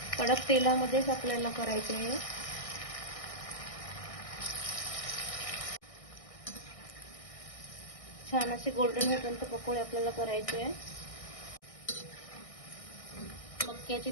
कडक तेलामध्येच आपल्याला करायचे आहे. छान असे गोल्डन होईपर्यंत पकोडे आपल्याला करायचे आहे. मक्याचे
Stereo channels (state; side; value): late; right; 1.6 ms